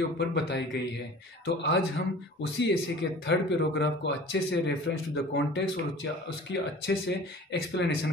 ऊपर बताई गई है। तो आज हम उसी ऐसे के थर्ड पैराग्राफ को अच्छे से रेफरेंस टू द कॉन्टेक्स्ट और उसकी अच्छे से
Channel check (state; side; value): normal; both; correlation 0.43